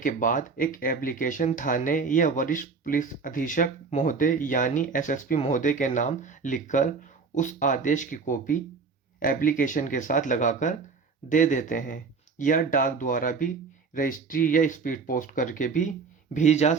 बाद एक एप्लीकेशन थाने या वरिष्ठ पुलिस अधीक्षक महोदय यानी एसएसपी महोदय के नाम लिखकर उस आदेश की कॉपी एप्लीकेशन के साथ लगाकर दे देते हैं या डाक द्वारा भी रजिस्ट्री या स्पीड पोस्ट करके भी भेजी जा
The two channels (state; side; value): quieter; left; 4.9 dB